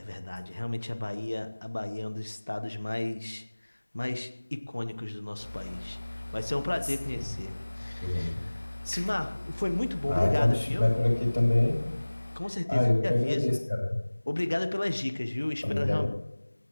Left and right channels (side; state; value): both; inverted; correlation -1.00